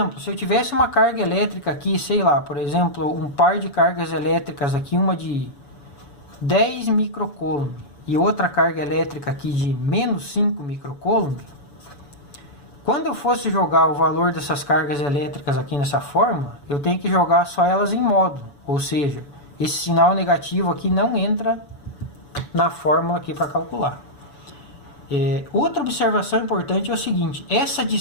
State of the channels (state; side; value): late; right; 7.0 ms